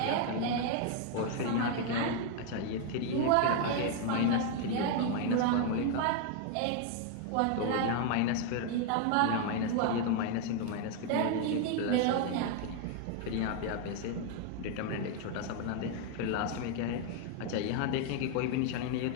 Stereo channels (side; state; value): both; different; correlation 0.00